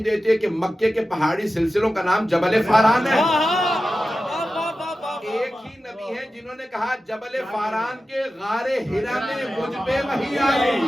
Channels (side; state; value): both; normal; correlation 0.93